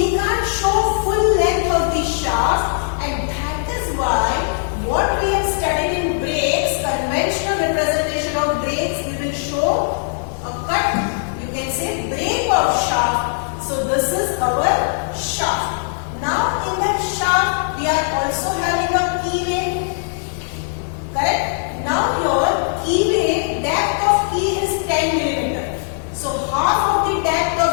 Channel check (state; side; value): silent; right; digital silence